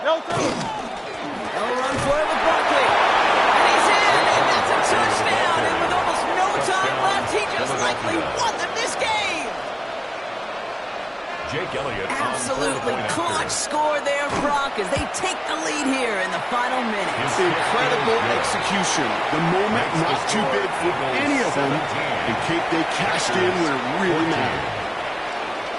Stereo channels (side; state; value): both; identical; correlation 1.00